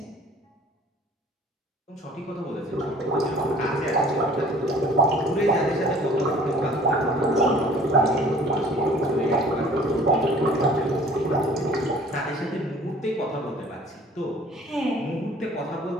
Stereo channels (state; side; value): normal; both; correlation 0.51